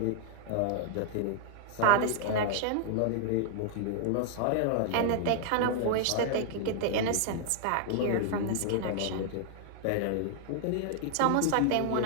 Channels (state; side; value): different; both; correlation -0.01